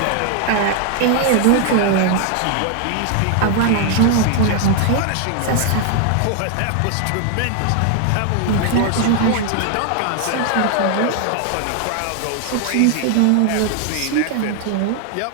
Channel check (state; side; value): different; both; correlation 0.00